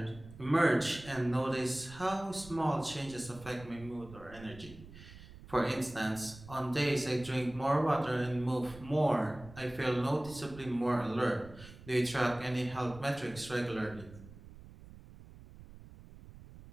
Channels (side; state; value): right; noise; rumble, 18 dB below the sound